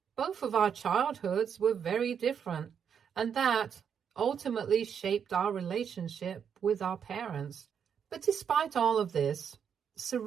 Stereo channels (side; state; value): left; quieter; 7.6 dB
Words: both of our childhoods were very different, and that ultimately shaped our relationship with our parents. But despite all of this,